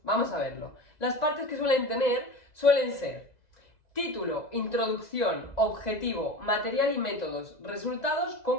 Vamos a verlo. Las partes que suelen tener suelen ser título, introducción, objetivo, material y métodos, resultados,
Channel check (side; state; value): right; late; 2.0 ms